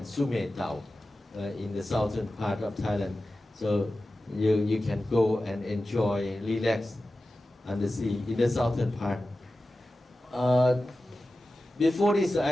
Sumetau, in the southern part of Thailand. So you can go and enjoy, relax on the sea in the southern part. Before this,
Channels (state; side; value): normal; both; correlation 0.94